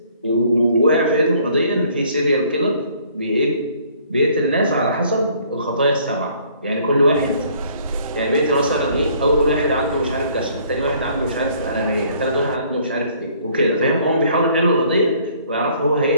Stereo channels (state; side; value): inverted; both; correlation -0.60